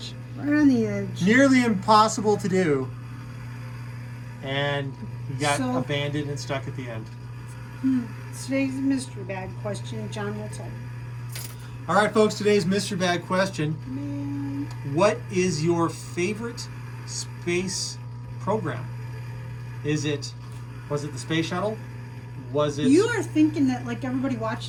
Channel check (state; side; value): identical; both; correlation 1.00